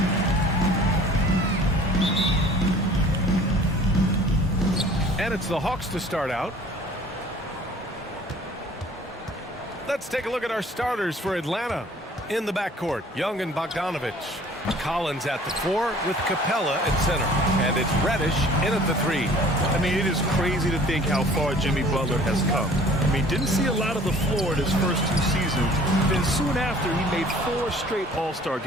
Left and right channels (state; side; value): normal; both; correlation 0.50